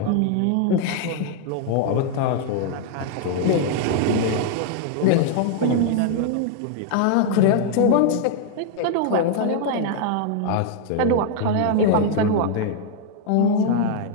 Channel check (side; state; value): both; different; correlation 0.00